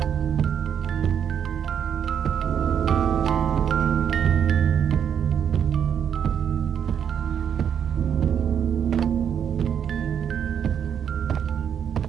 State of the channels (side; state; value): left; quieter; 8.4 dB